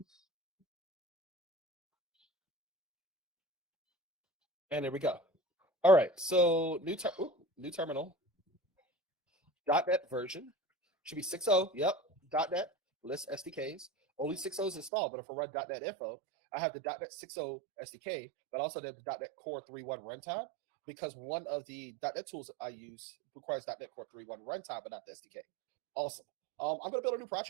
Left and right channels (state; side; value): drops out; left; at 14.9 s